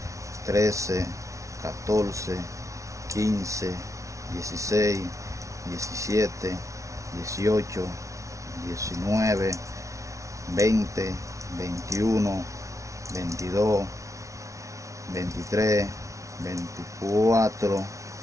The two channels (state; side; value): late; left; 0.15 ms